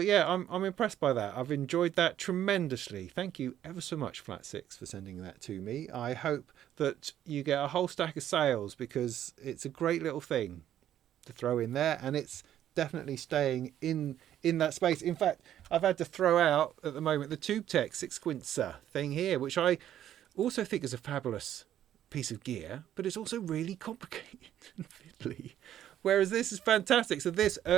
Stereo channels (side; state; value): left; quieter; 11.2 dB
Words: I'm impressed by that. I've enjoyed that tremendously. Thank you ever so much, FlatSix, for sending that to me. I hope that you get a whole stack of sales, because it's a great little thing to throw in there, and it's definitely staying in that space. In fact, I've had to throw out at the moment the TubeTech 6-quincer thing here, which I also think is a fabulous piece of gear, but it's also really complicated and fiddly. Whereas this is fantastic. So this